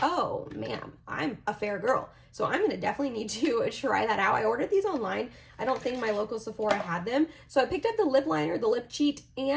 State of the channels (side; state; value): both; identical; correlation 1.00